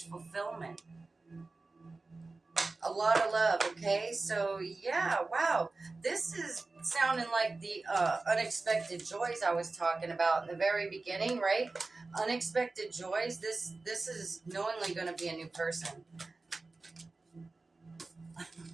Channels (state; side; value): quieter; left; 3.5 dB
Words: fulfillment. A lot of love, okay? So, yeah, wow. This is sounding like the unexpected joys I was talking about in the very beginning, right? Unexpected joys. This is knowingly going to be a new person.